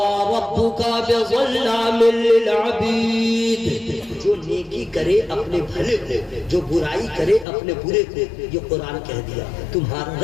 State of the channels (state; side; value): drops out; right; at 7.5 s